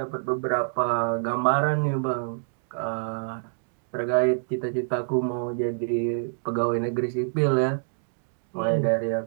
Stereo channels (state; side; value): silent; left; digital silence